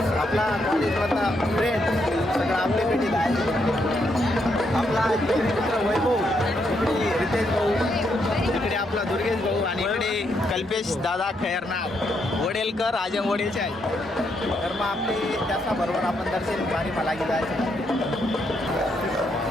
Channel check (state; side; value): normal; both; correlation 0.77